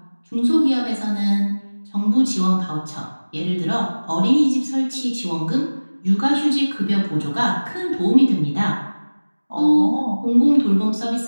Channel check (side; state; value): both; inverted; correlation -1.00